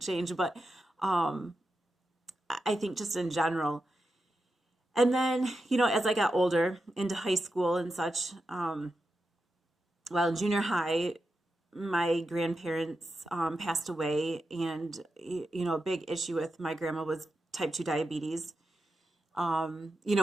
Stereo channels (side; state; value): both; normal; correlation 0.89